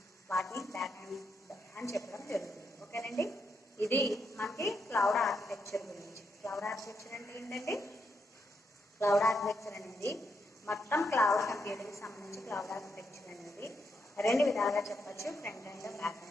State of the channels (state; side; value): normal; both; correlation 0.81